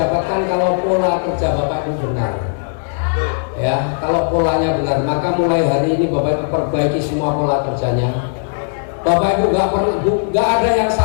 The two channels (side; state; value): right; silent; digital silence